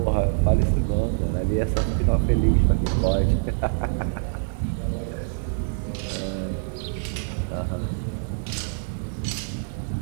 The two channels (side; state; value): left; silent; digital silence